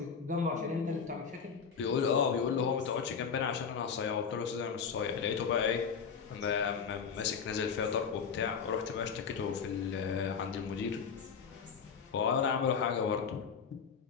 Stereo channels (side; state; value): right; quieter; 6.3 dB